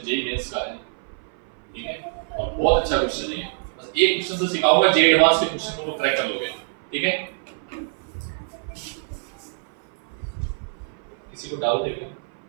जेईई मेंस का है। ठीक है, और बहुत अच्छा क्वेश्चन है, बस एक क्वेश्चन से सिखाऊंगा, जेईई एडवांस के क्वेश्चन को क्रैक कर लोगे। ठीक है, किसी को डाउट है क्या,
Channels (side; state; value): left; silent; 56 dB below the other